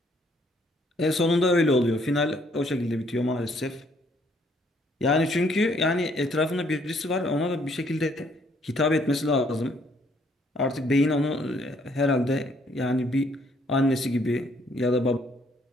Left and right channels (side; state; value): both; normal; correlation 0.66